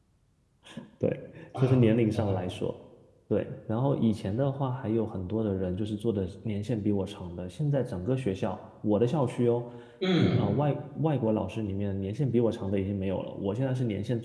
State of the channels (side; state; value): both; identical; correlation 1.00